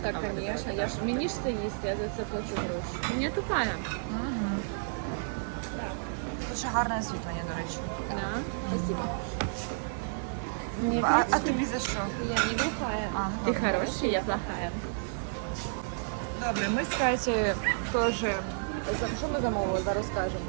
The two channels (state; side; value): silent; left; digital silence